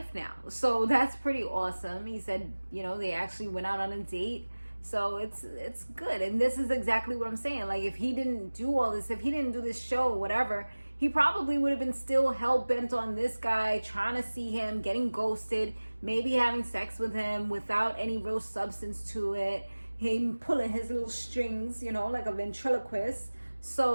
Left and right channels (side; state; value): both; inverted; correlation -1.00